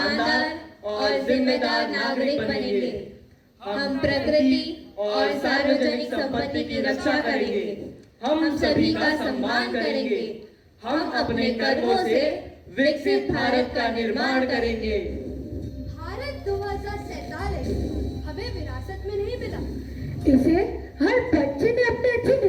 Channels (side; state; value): both; identical; correlation 1.00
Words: और जिम्मेदार नागरिक बनेंगे। हम प्रकृति और सार्वजनिक संपत्ति की रक्षा करेंगे। हम सभी का सम्मान करेंगे। हम अपने कर्मों से विकसित भारत का निर्माण करेंगे। भारत 2047 हमें विरासत में नहीं मिला, इसे हर बच्चे ने अपने अच्छे